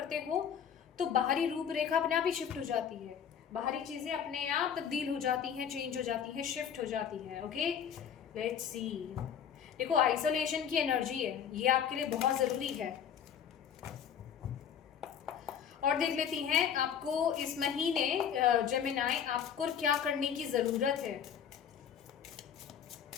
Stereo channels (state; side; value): quieter; right; 8.3 dB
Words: हो, तो बाहरी रूपरेखा अपने आप ही शिफ्ट हो जाती है, बाहरी चीज़ें अपने आप तब्दील हो जाती हैं, चेंज हो जाती हैं, शिफ्ट हो जाती हैं, ओके। लेट्स सी, देखो आइसोलेशन की एनर्जी है, ये आपके लिए बहुत ज़रूरी है। और देख लेती हैं आपको इस महीने जेमिनाई आपको क्या करने की ज़रूरत है।